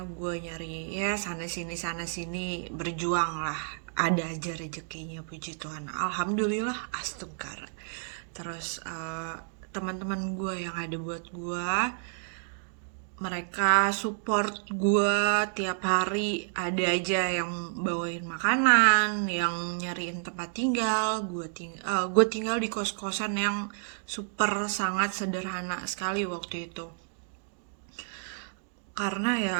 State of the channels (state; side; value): silent; left; 58 dB below the other